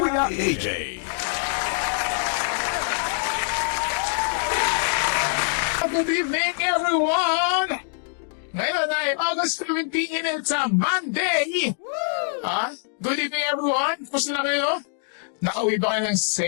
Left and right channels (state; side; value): silent; right; digital silence